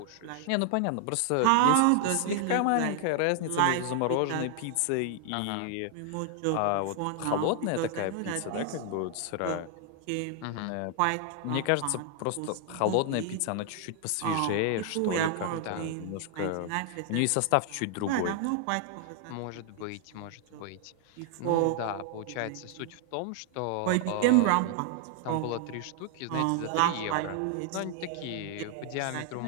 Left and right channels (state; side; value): different; both; correlation 0.00